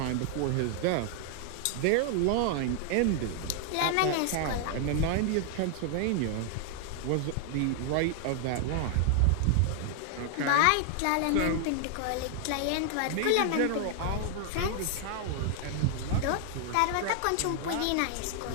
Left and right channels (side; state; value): both; different; correlation 0.00